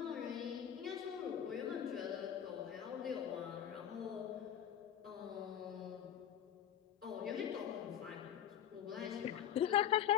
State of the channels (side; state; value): right; quieter; 9.6 dB